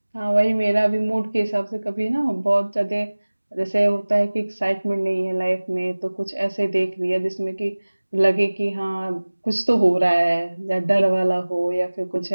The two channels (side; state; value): both; inverted; correlation -1.00